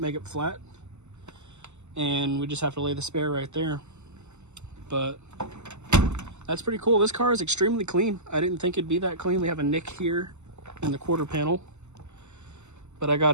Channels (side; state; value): left; late; 0.83 ms